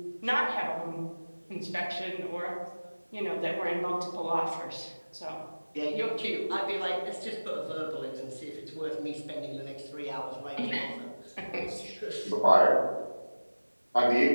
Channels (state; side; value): inverted; both; correlation -1.00